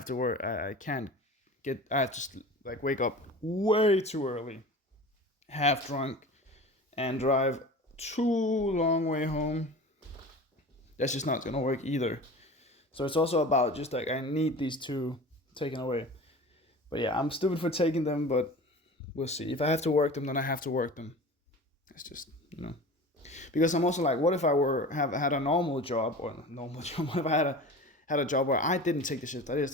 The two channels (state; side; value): normal; both; correlation 0.36